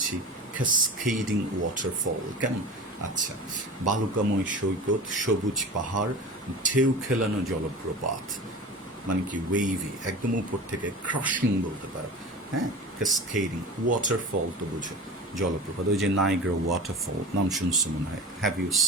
ক্যাসকেডিং ওয়াটারফল। কেমন? আচ্ছা, বালুকাময় সৈকত, সবুজ পাহাড়, ঢেউ খেলানো জলপ্রপাত, মানে কি ওয়েভি, একদম উপর থেকে ক্রাশিং বলতে পারো। হ্যাঁ, ক্যাসকেডিং ওয়াটারফল তো বুঝো, জলপ্রপাত। ওই যে নাইগ্রা ওয়াটারফল নাম শুনছো মনে হয়, হ্যাভ ইউ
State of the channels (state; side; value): normal; both; correlation 0.33